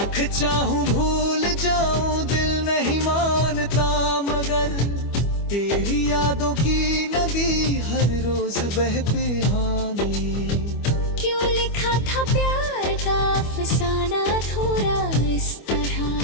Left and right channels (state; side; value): late; right; 25 ms